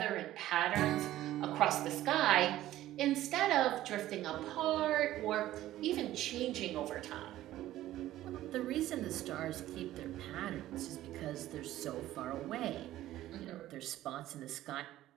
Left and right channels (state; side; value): quieter; left; 14.3 dB